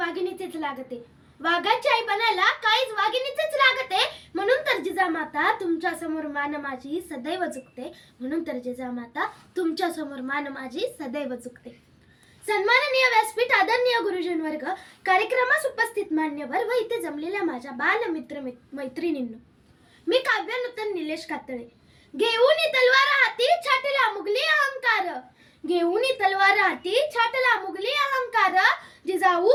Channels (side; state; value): both; identical; correlation 1.00